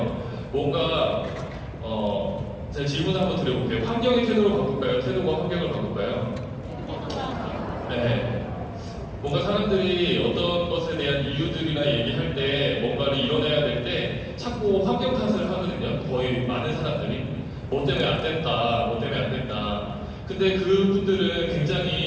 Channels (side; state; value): both; identical; correlation 1.00